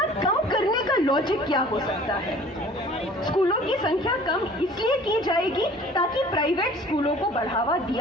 कम करने का लॉजिक क्या हो सकता है। स्कूलों की संख्या कम इसलिए की जाएगी ताकि प्राइवेट स्कूलों को बढ़ावा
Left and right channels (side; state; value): both; normal; correlation 0.49